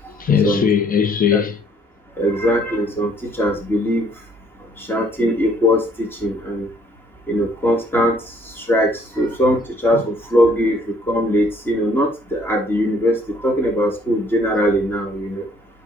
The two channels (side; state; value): both; normal; correlation 0.62